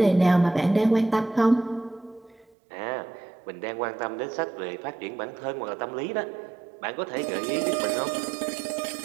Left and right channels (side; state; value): left; drops out; at 2.5 s